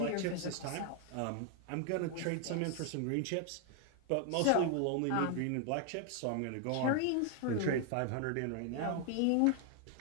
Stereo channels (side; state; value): both; different; correlation 0.00